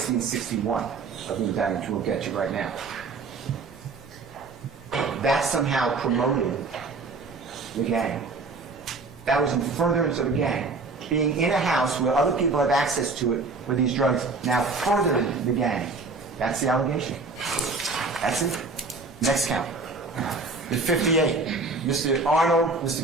and 61 of the indictment, which we'll get to right now. That somehow promoted the gang. That was in furtherance of the gang. Being in a house where other people have access to it with these drugs now furthered the gang. That's the allegation. That's it. Next count. The 58. Mr. Arnold,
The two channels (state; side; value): quieter; left; 3.8 dB